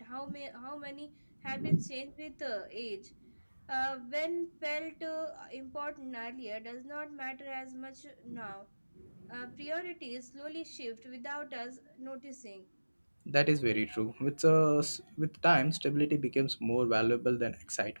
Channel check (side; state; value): both; inverted; correlation -1.00